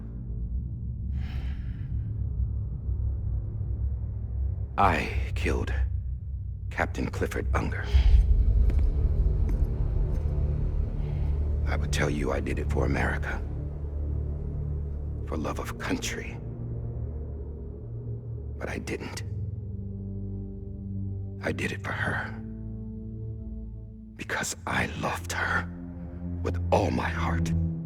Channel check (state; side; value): identical; both; correlation 1.00